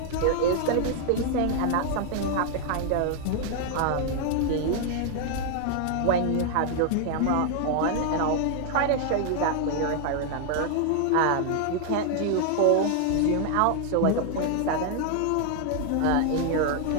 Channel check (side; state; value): both; different; correlation 0.00